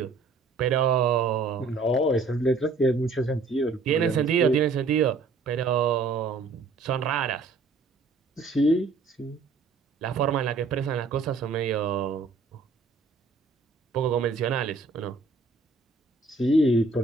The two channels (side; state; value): left; quieter; 4.0 dB